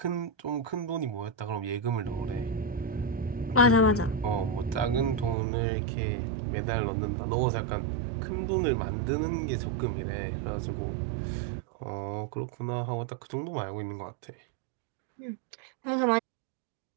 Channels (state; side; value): drops out; left; at 5.4 s